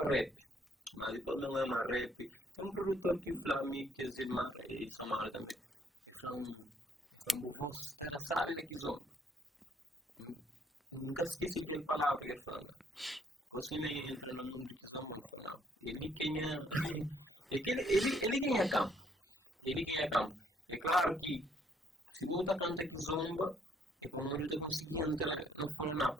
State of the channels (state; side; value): normal; both; correlation 0.66